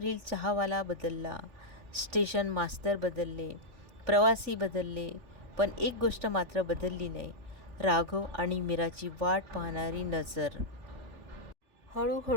चहावाला बदलला, स्टेशन मास्तर बदलले, प्रवासी बदलले, पण एक गोष्ट मात्र बदलली नाही, राघव आणि मीराची वाट पाहणारी नजर.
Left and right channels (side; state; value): left; late; 3.4 ms